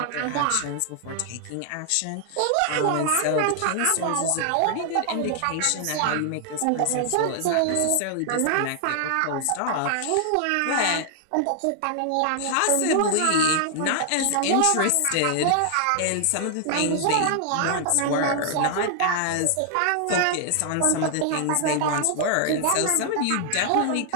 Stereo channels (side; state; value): both; different; correlation 0.00